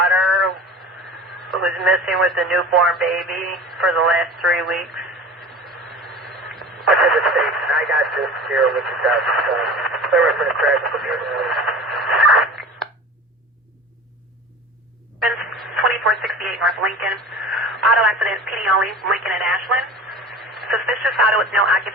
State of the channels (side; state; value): both; normal; correlation 0.37